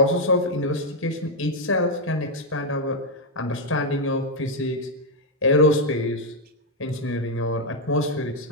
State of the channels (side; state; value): both; normal; correlation 0.01